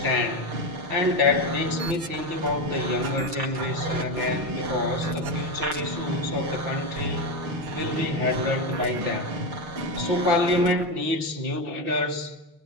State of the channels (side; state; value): left; late; 6.6 ms